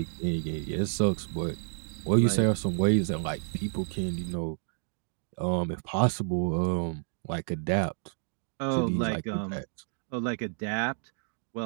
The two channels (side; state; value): left; silent; 58 dB below the other